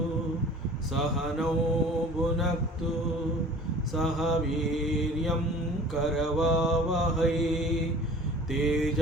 सहनौ भुनक्तु सह वीर्यं करवावहै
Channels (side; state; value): both; normal; correlation 0.45